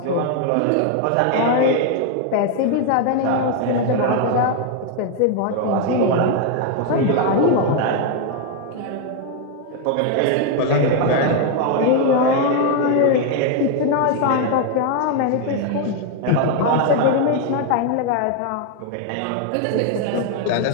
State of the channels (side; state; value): both; different; correlation 0.01